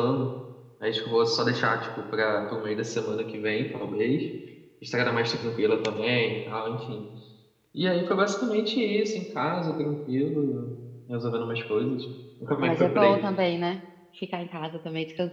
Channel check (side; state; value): both; identical; correlation 1.00